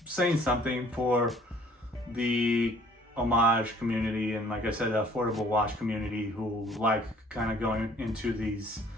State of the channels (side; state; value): both; normal; correlation 0.56